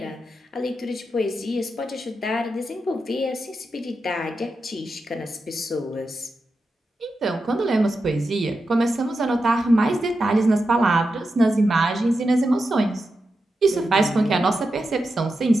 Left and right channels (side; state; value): both; normal; correlation 0.89